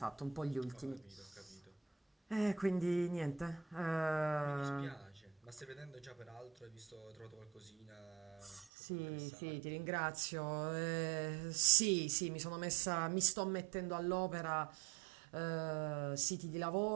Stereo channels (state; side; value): drops out; left; at 8.7 s